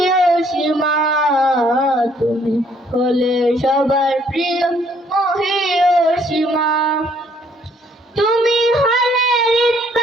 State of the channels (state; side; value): normal; both; correlation 0.65